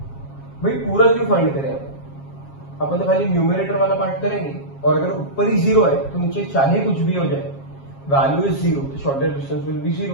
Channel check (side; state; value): right; late; 7.4 ms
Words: भाई पूरा क्यों फाइंड करें, अपन तो खाली न्यूमरेटर वाला पार्ट करेंगे, और अगर ऊपर ही 0 है तो नीचे चाहे कुछ भी हो जाए, वैल्यू इज 0, तो shortest distance will be